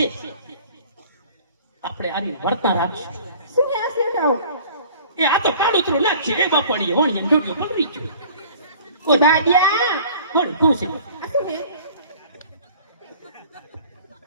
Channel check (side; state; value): both; inverted; correlation -0.48